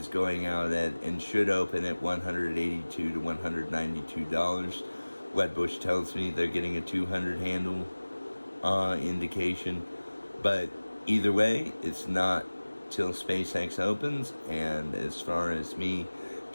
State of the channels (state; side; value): inverted; both; correlation -1.00